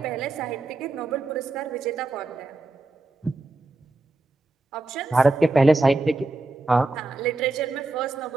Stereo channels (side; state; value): left; quieter; 3.1 dB